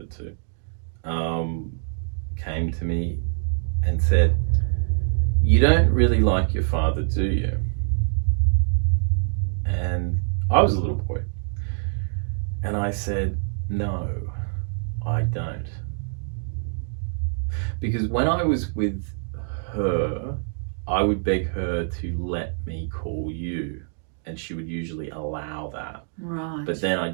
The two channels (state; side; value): silent; left; digital silence